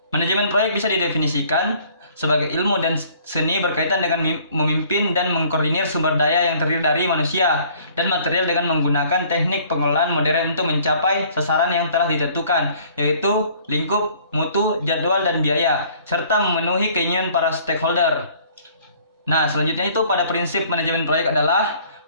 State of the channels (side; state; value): both; inverted; correlation -0.56